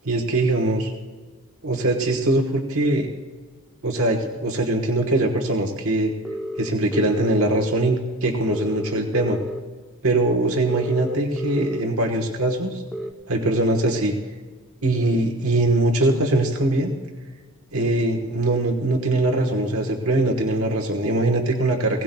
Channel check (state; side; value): normal; both; correlation 0.38